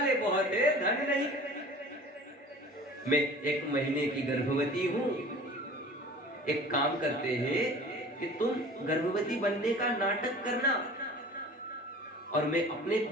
बहुत है, धन नहीं। मैं 1 महीने की गर्भवती हूं। एक काम करते हैं कि तुम गर्भवती बनने का नाटक करना और मैं अपने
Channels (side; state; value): both; normal; correlation 0.43